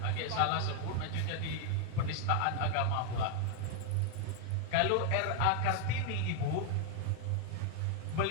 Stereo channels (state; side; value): different; both; correlation 0.00